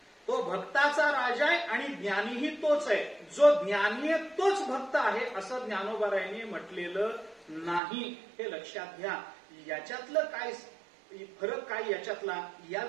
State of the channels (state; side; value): drops out; left; at 7.8 s